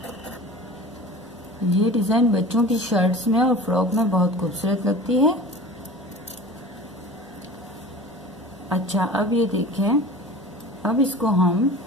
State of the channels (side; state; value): both; normal; correlation 0.39